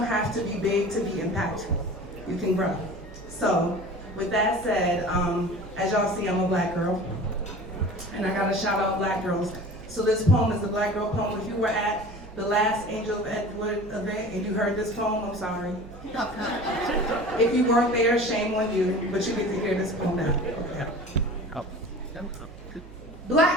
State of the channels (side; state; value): right; noise; hum, 17 dB below the sound